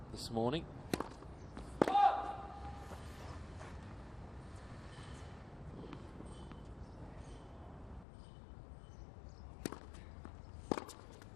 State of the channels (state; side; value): drops out; right; at 8.1 s